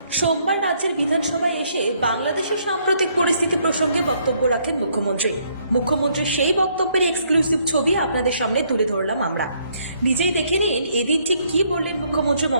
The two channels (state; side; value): inverted; both; correlation -0.69